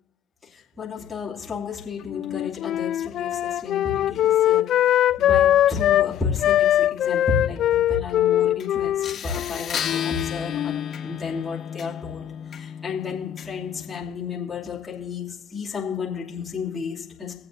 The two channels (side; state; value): right; quieter; 10.0 dB